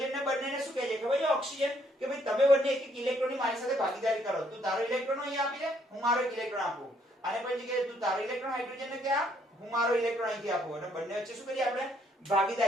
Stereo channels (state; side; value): normal; both; correlation 0.68